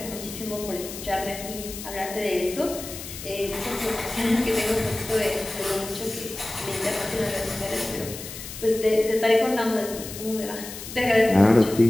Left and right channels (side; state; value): left; noise; hiss, 11 dB below the sound